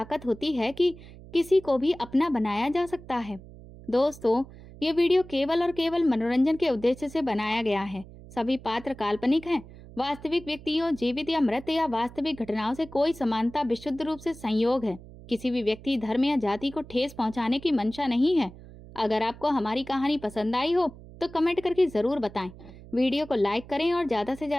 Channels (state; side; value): noise; right; hum, 18 dB below the sound